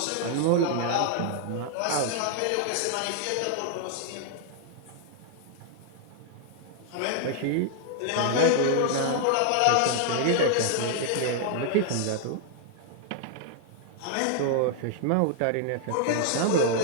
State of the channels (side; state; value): both; different; correlation 0.00